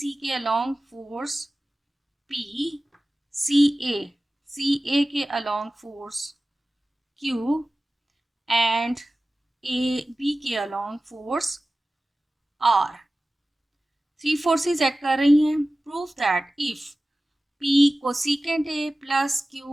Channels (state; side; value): normal; both; correlation 0.96